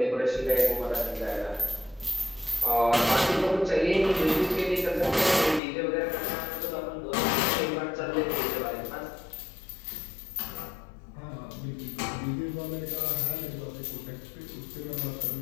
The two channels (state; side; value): drops out; right; at 5.6 s